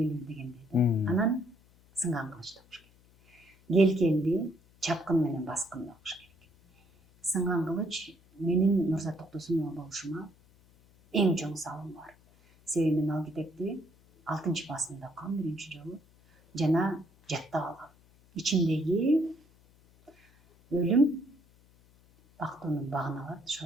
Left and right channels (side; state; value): left; noise; hum, 29 dB below the sound